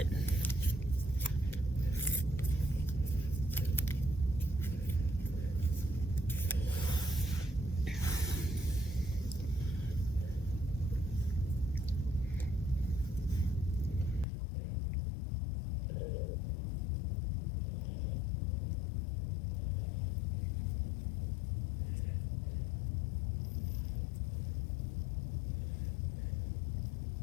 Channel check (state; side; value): drops out; right; at 14.2 s